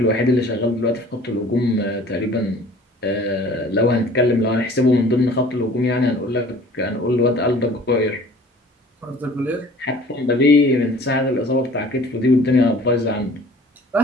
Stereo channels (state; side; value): normal; both; correlation 0.49